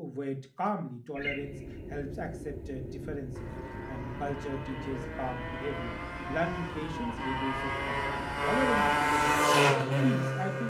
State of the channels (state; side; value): identical; both; correlation 1.00